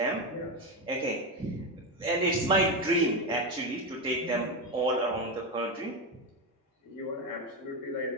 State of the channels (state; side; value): normal; both; correlation 0.13